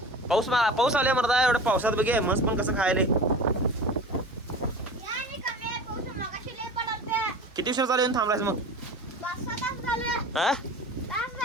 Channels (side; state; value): both; normal; correlation 0.36